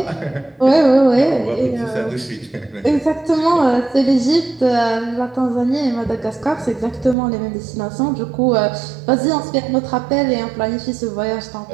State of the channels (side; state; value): left; drops out; at 7.2 s